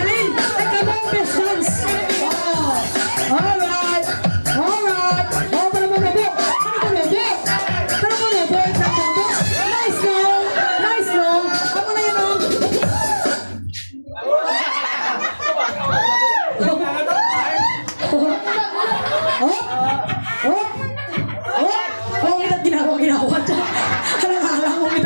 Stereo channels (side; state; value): both; inverted; correlation -1.00